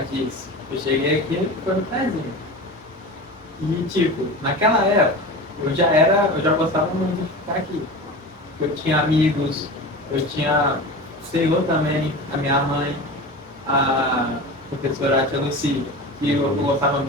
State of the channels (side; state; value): both; normal; correlation 0.31